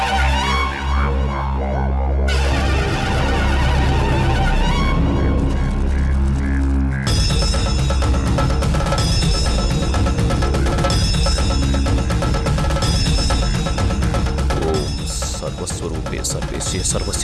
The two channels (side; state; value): both; identical; correlation 1.00